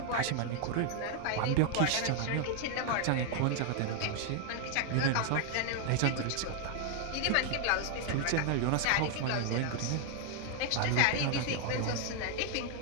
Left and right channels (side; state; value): both; different; correlation 0.00